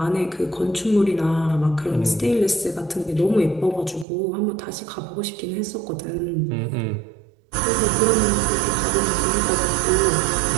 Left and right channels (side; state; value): left; drops out; at 4.0 s